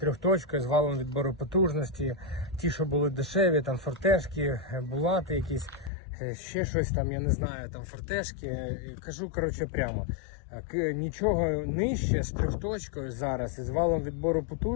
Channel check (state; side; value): drops out; right; at 5.9 s